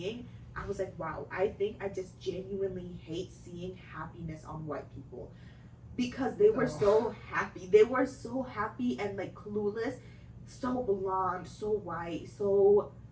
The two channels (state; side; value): identical; both; correlation 1.00